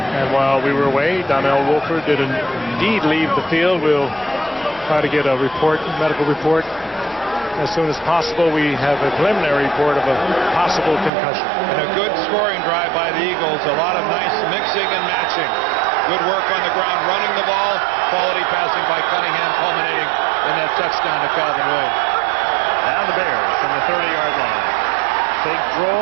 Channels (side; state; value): left; drops out; at 11.1 s